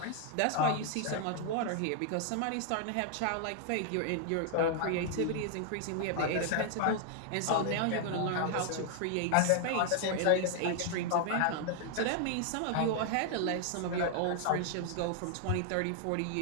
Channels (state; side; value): different; both; correlation 0.00